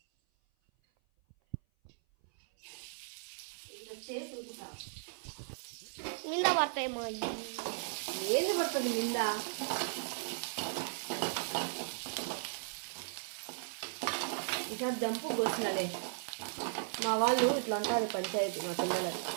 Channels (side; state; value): left; silent; 53 dB below the other